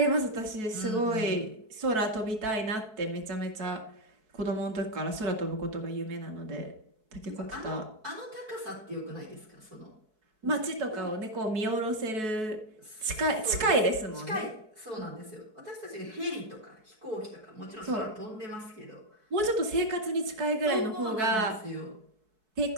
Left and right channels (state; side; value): late; left; 4.6 ms